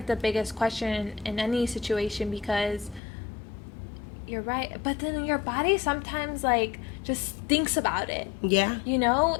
the biggest question in any situation, because you're right, but then your body sometimes, like, just thinks about it. Yeah. You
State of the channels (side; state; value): right; drops out; at 3.0 s